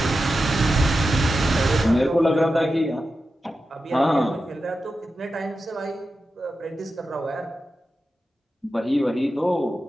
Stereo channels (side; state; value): both; normal; correlation 0.91